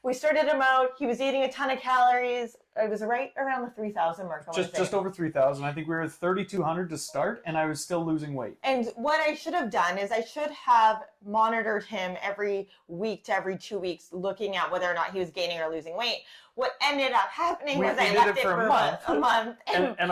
we started him out. He was eating a ton of calories. It was right around the 3,000 mark. Just over 3,000. I think we were at 3,200 to start, and I was still losing weight. And what I should have done is I should have monitored him every week to every 2 weeks, looking at whether or not he was gaining or losing weight. What ended up happening was I left it for a month. And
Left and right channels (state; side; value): identical; both; correlation 1.00